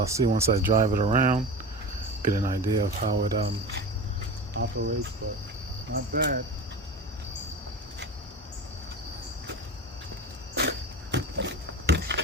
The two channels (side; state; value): both; normal; correlation 0.30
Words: see once I drive it around, get an idea of how it operates, but not bad.